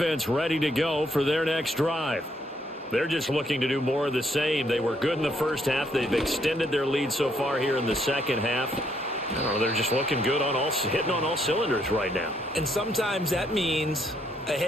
ready to go for their next drive. They're just looking to do more of the same. They were good in the first half. They've extended their lead so far here in the second half. I don't know, they're just looking good hitting on all cylinders right now. And sometimes that means a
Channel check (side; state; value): both; normal; correlation 0.72